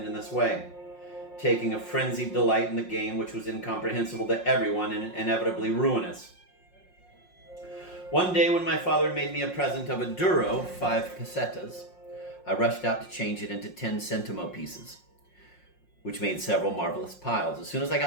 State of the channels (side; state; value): right; late; 5.6 ms